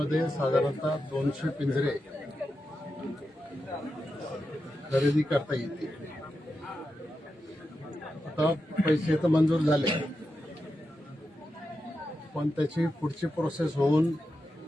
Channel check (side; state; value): both; normal; correlation 0.89